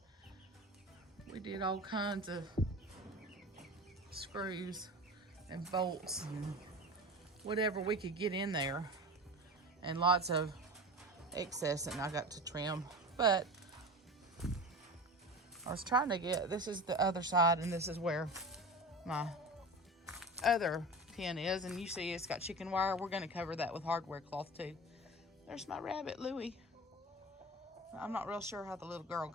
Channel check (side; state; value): both; normal; correlation 0.32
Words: we did all kinds of screws and bolts and whatever we could get in there, and lots of excess and I got to trim. But I was trying to get, this is the other side and this is where my other pen is, and you see it's got chicken wire. We're going to cover that with hardware cloth too. There's my rabbit, Louie. I'm not real sure how the little girl